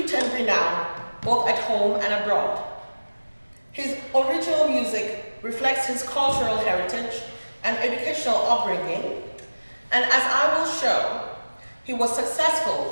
and renown both at home and abroad. His original music reflects his cultural heritage and educational upbringing, and as I will show, he was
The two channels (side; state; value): both; inverted; correlation -1.00